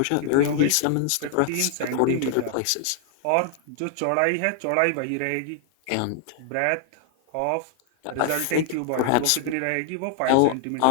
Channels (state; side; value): different; both; correlation 0.00